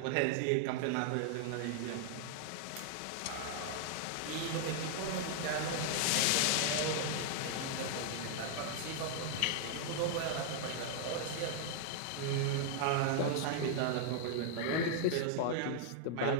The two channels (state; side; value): different; both; correlation 0.00